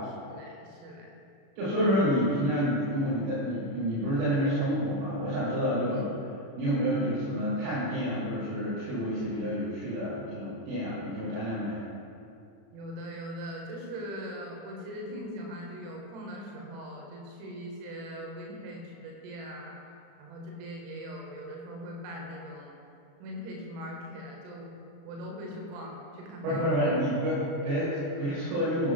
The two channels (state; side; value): late; left; 36 ms